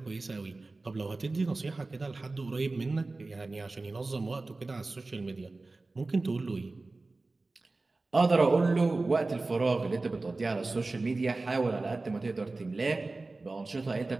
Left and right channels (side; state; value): left; quieter; 3.3 dB